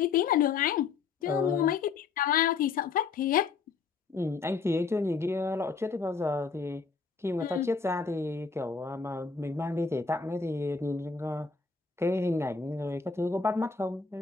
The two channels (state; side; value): quieter; right; 5.1 dB